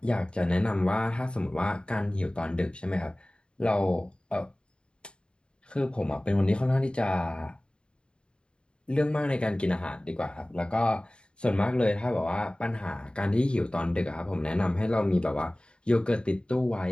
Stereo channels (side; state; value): right; late; 0.052 ms